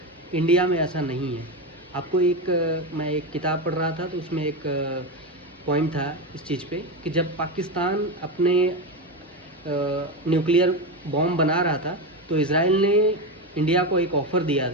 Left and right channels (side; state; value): both; normal; correlation 0.16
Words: इंडिया में ऐसा नहीं है। आपको मैं एक किताब पढ़ रहा था तो उसमें एक पॉइंट था इस चीज़ पे कि जब पाकिस्तान अपने न्यूक्लियर बॉम्ब बना रहा था तो इज़राइल ने इंडिया को एक ऑफ़र दिया